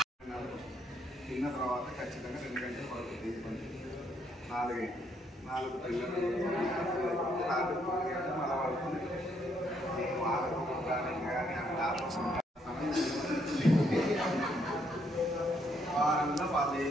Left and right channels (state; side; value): normal; both; correlation 0.72